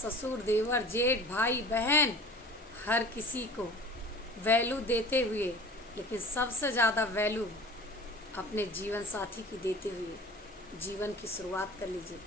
ससुर देवर जेठ भाई बहन हर किसी को वैल्यू देते हुए, लेकिन सबसे ज़्यादा वैल्यू अपने जीवन साथी की देते हुए जीवन की शुरुआत कर लीजिए।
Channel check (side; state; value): both; normal; correlation 0.41